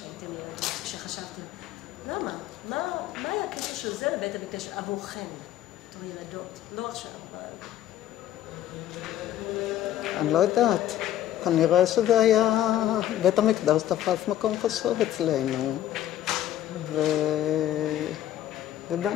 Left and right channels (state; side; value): quieter; right; 12.2 dB